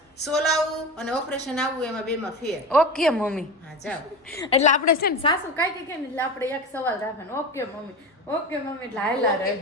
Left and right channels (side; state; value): both; normal; correlation 0.26